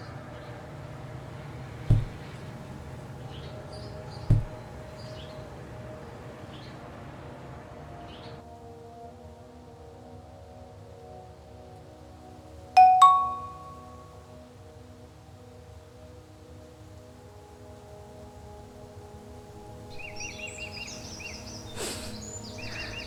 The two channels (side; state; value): both; identical; correlation 1.00